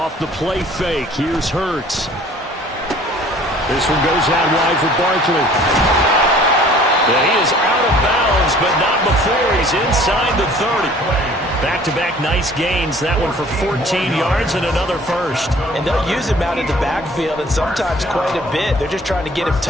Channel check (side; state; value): both; normal; correlation 0.52